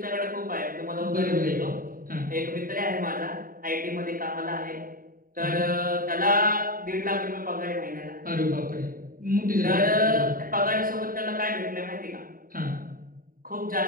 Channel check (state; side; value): late; left; 0.41 ms